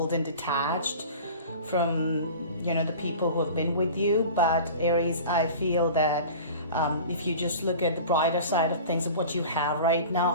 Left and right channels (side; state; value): both; inverted; correlation -0.38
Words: and detached from the people who have been with you. But Aries, I feel that if you just look at the brighter side of things of what you have right